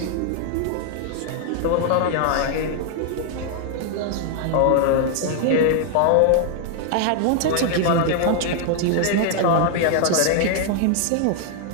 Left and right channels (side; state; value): both; different; correlation 0.00